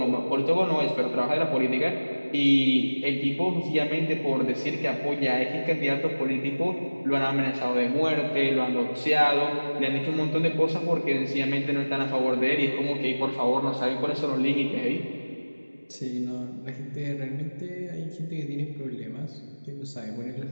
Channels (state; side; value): inverted; both; correlation -1.00